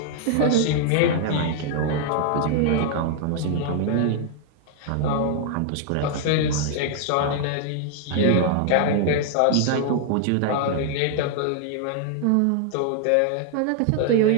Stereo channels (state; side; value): different; both; correlation 0.00